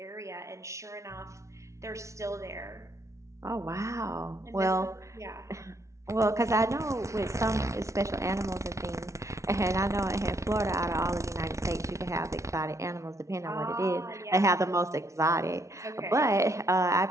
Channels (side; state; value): left; late; 0.14 ms